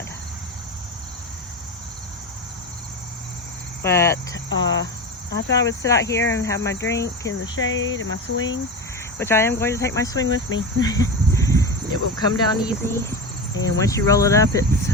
But I thought I would sit out here and have my drink in the shade and my swing, which I am going to take my swing with me. It will come down easy, and once you roll it up, it's,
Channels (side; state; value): both; normal; correlation 0.23